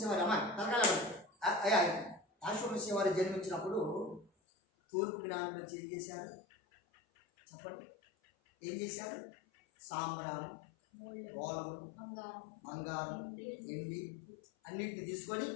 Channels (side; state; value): right; drops out; at 4.3 s